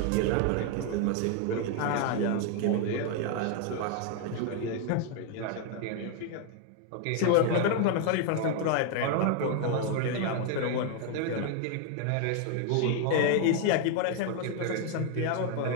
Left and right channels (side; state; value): both; different; correlation 0.00